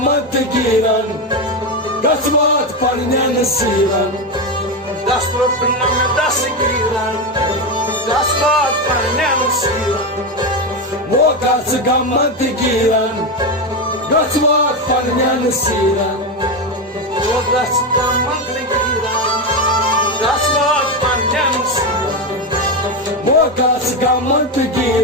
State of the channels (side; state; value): both; normal; correlation 0.12